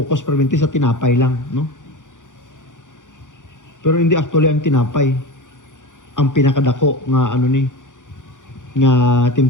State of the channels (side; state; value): right; late; 0.87 ms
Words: permanente sa tinapay lang, no? Pero hindi actually ang tinapay ang pinakadako nga nga